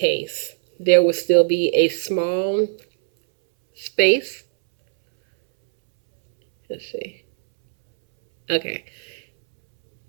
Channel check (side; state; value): left; silent; 66 dB below the other